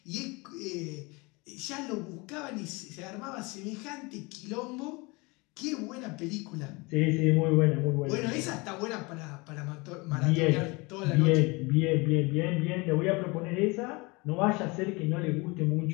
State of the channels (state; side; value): quieter; right; 26.2 dB